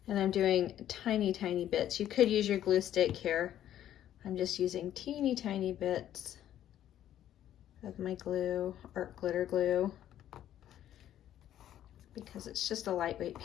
And I'm doing tiny, tiny bits. You could use your glue stick here. I'm just using teeny, tiny bits of my glue, art glitter glue, because it's just a lightweight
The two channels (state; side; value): quieter; right; 11.6 dB